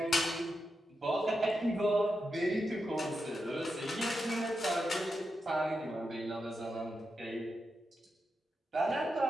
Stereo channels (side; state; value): both; normal; correlation 0.87